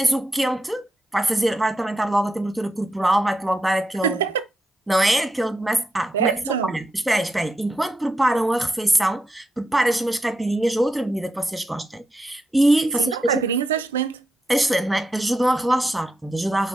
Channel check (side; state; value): both; normal; correlation 0.85